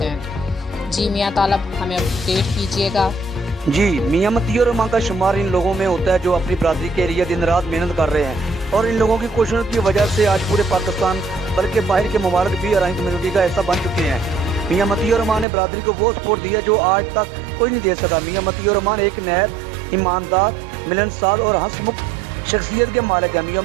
جی میاں طالب، ہمیں اپڈیٹ کیجیے گا۔ جی، میاں مطیع الرحمان کا شمار ان لوگوں میں ہوتا ہے جو اپنی برادری کے لیے دن رات محنت کر رہے ہیں، اور ان لوگوں کی کوششوں کی وجہ سے آج پورے پاکستان بلکہ باہر کے ممالک بھی آرائی کمیونٹی کا حصہ بن چکے ہیں۔ میاں مطیع الرحمان نے برادری کو وہ سپورٹ دی ہے جو آج تک کوئی نہیں دے سکا۔ میاں مطیع الرحمان ایک نہایت ایماندار، ملنسار اور ہنسمکھ شخصیت کے مالک ہیں۔ میاں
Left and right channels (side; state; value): left; drops out; at 15.5 s